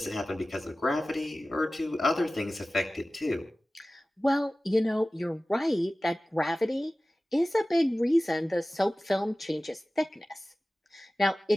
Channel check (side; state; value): both; normal; correlation 0.97